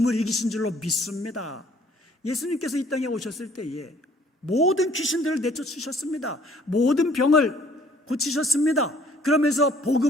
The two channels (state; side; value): normal; both; correlation 0.59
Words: 이기신 줄로 믿습니다. 예수님께서 이 땅에 오셨을 때에 모든 귀신들을 내쫓으셨습니다. 모든 병을 고치셨습니다. 그러면서